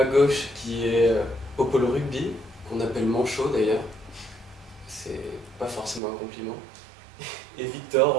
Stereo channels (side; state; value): left; drops out; at 6.0 s